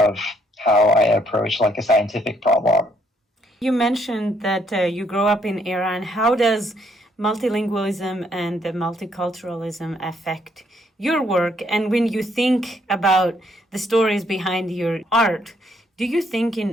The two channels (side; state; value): both; normal; correlation 0.70